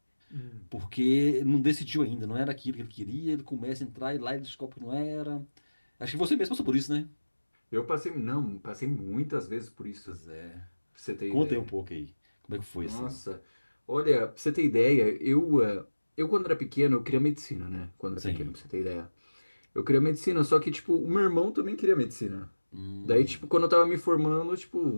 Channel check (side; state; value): both; inverted; correlation -1.00